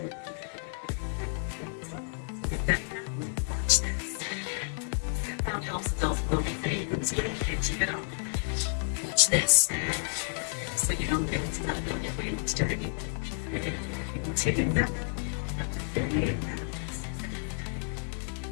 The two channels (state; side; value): silent; right; 57 dB below the other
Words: Found helps adults build things. Watch this. So you don't get into that building where you start anything. Take that.